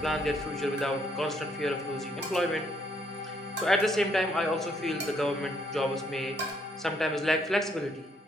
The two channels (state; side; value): normal; both; correlation 0.70